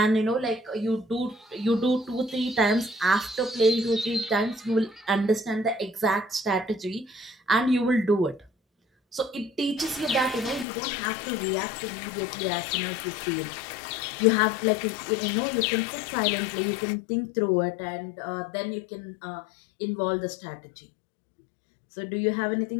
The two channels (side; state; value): right; drops out; at 10.7 s